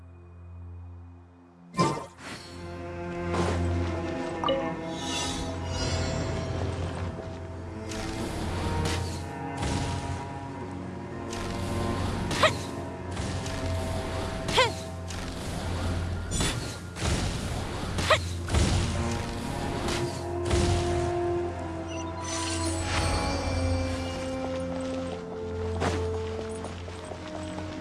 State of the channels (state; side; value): identical; both; correlation 1.00